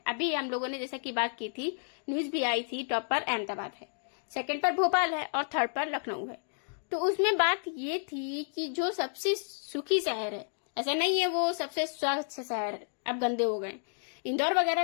अभी हम लोगों ने जैसा की बात की थी, न्यूज भी आई थी, टॉप पर अहमदाबाद है, सेकंड पर भोपाल है और थर्ड पर लखनऊ है। तो उसमें बात ये थी कि जो सबसे सुखी शहर है, ऐसा नहीं है वो सबसे स्वच्छ शहर अब गंदे हो गए, इंदौर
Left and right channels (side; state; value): right; silent; digital silence